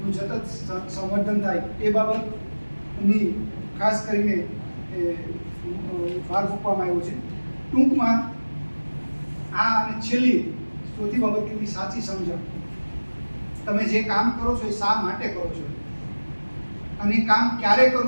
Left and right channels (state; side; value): inverted; both; correlation -1.00